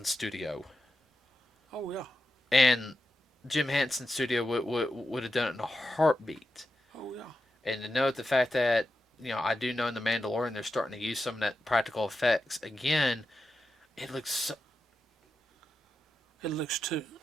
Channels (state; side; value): normal; both; correlation 0.89